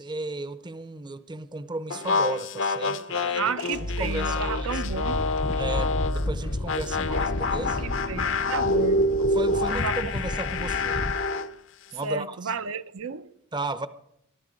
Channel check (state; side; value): normal; both; correlation 0.14